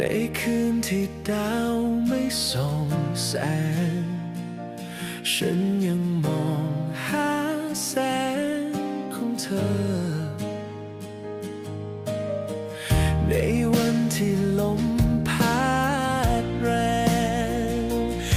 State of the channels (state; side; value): identical; both; correlation 1.00